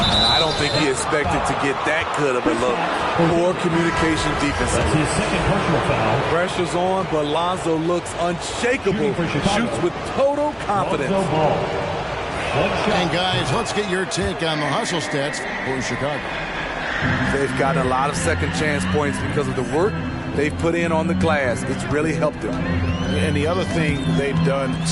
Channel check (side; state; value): both; identical; correlation 1.00